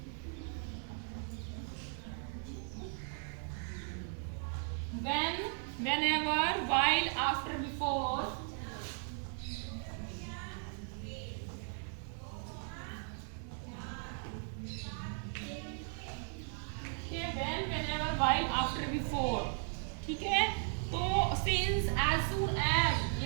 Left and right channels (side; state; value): left; silent; 53 dB below the other